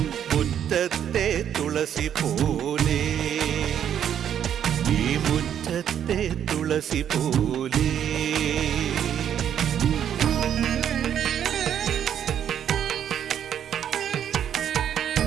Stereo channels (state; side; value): quieter; left; 9.5 dB